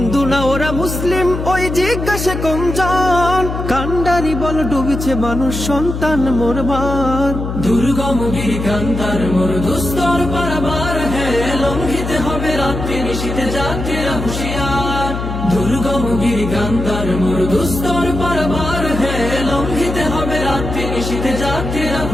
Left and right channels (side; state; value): left; noise; hum, 5 dB below the sound